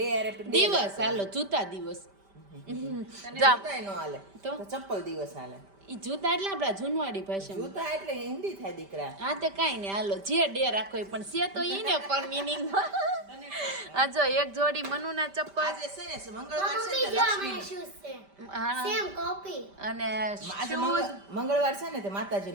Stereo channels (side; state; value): left; late; 5.1 ms